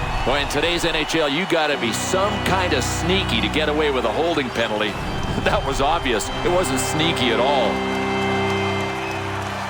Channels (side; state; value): both; identical; correlation 1.00